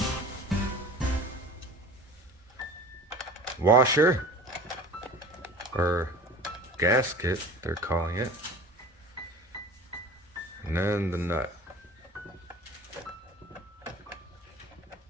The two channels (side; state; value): both; normal; correlation 0.40